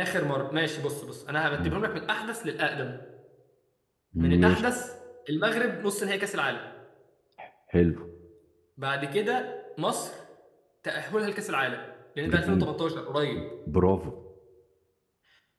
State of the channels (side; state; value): both; identical; correlation 1.00